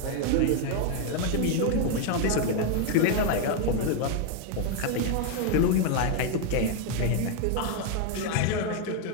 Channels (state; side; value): different; both; correlation 0.01